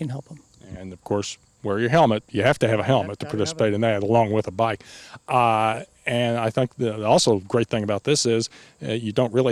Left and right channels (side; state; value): both; identical; correlation 1.00